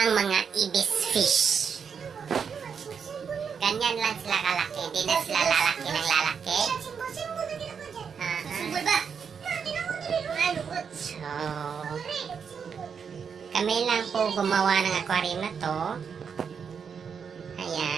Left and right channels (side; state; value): left; quieter; 6.6 dB